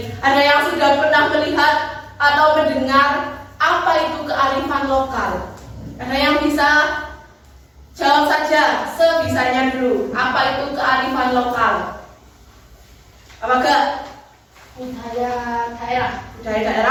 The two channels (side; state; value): both; identical; correlation 1.00